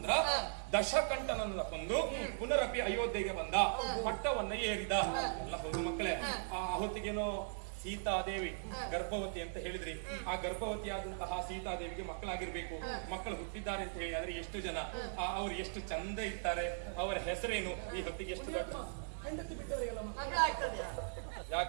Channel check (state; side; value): silent; left; digital silence